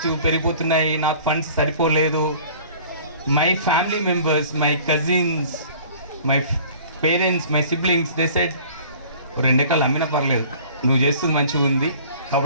పెరిగిపోతున్నాయి, నాకు ఫండ్స్ సరిపోలేదు. My family members, my cousins, my parents, my siblings, they said 2 ఎకరాలు అమ్మినా పర్లేదు, నువ్వు చేస్తుంది మంచిగా ఉంది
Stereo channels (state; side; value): inverted; both; correlation -0.49